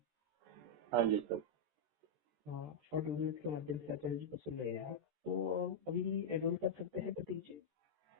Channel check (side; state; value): left; late; 14 ms